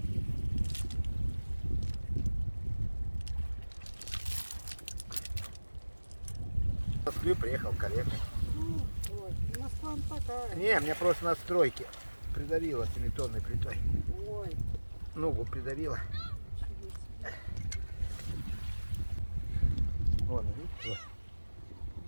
В Москву приехал коллега. Ой, Москва такая. Не, меня просто на стройке придавило 7-тонной плитой. Ой, Ногу придавило. ничего себе. Вон, видите?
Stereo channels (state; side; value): inverted; both; correlation -1.00